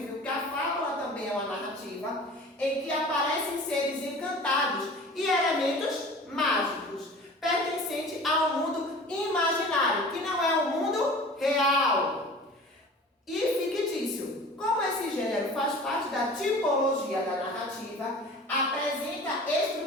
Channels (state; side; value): normal; both; correlation 0.42